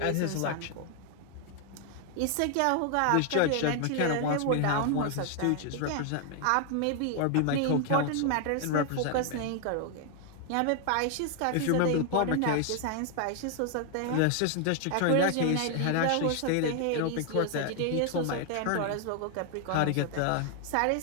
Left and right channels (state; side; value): different; both; correlation 0.00